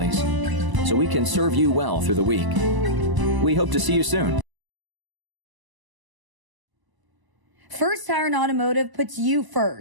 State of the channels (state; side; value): late; left; 1.0 ms